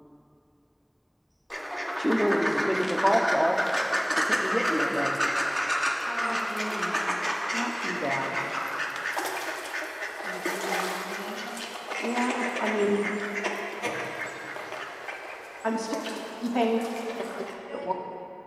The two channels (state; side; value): identical; both; correlation 1.00